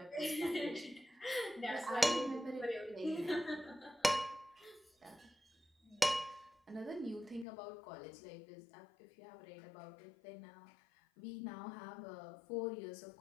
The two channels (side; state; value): right; drops out; at 7.5 s